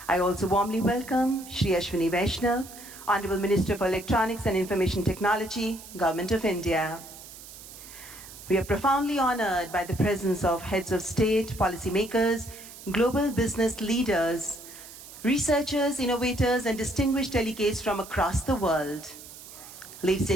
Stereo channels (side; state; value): right; noise; hiss, 16 dB below the sound